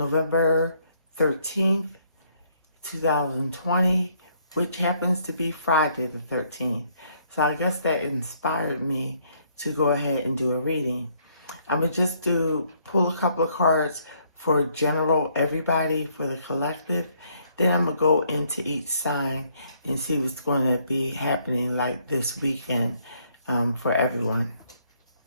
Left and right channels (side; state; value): both; inverted; correlation -0.68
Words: 13th, 2020, which happens to be Friday the 13th. So I guess that inspired me to go ahead and do a reading. I'm going to just pull a couple of cards for general everybody, for the collective. Then I'm going to go into each sign and see what's going to be happening like this weekend for everyone.